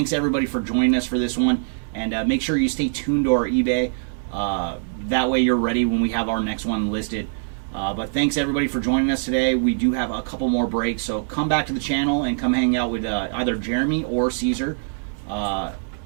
everybody, for joining us for this one. And make sure you stay tuned to our eBay. That way you're ready when we have our next one listed. But thanks, everybody, for joining us today. We do have a couple more breaks, so come back to the channel and come hang out with either Jeremy or Caesar.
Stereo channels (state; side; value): silent; left; digital silence